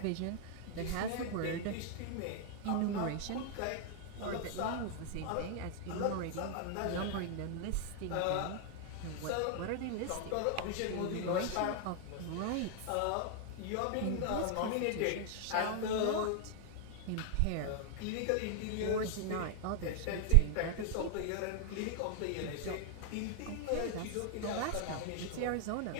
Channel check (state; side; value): different; both; correlation 0.00